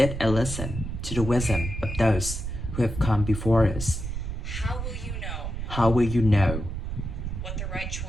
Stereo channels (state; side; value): noise; right; rumble, 5 dB below the sound